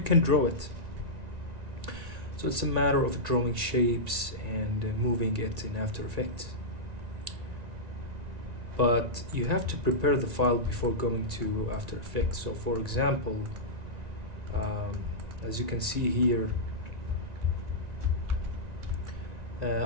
can draw it. So it's a matter of drawing shapes and moving it in After Effects. But you have to prepare the file before going to After Effects. So for example, as you can see here,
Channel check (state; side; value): late; left; 1.9 ms